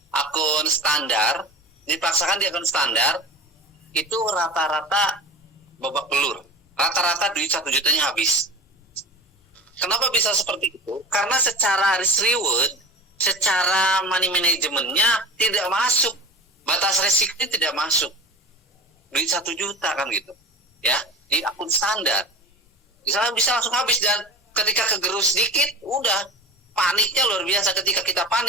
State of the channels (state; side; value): normal; both; correlation 0.33